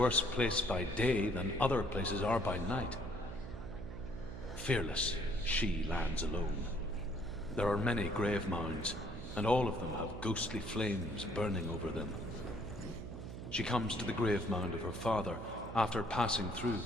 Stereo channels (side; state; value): right; noise; hum, 10 dB below the sound